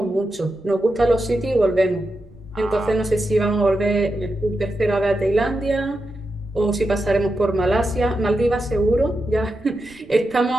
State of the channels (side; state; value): right; noise; rumble, 26 dB below the sound